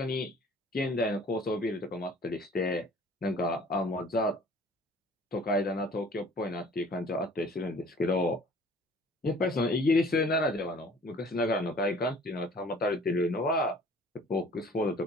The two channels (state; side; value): normal; both; correlation 0.51